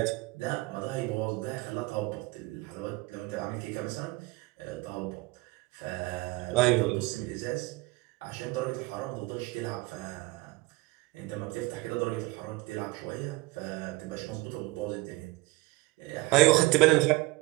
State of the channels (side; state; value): left; quieter; 21.6 dB